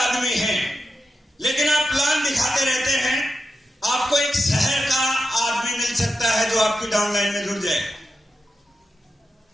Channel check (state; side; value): normal; both; correlation 0.89